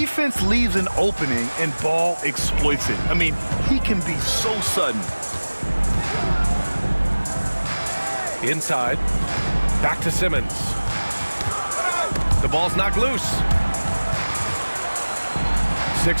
leaves an opening and Ball exploits it. I mean, he can be so sudden. Inside. Back to Simmons. The ball's knocked loose.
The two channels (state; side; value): inverted; both; correlation -1.00